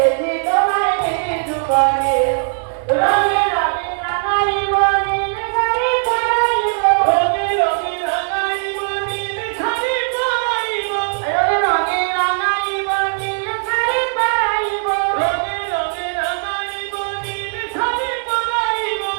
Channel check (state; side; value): silent; left; 67 dB below the other